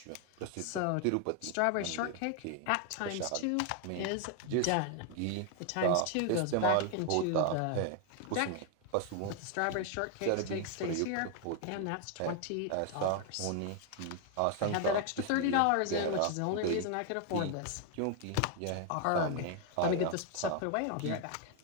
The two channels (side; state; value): both; different; correlation 0.00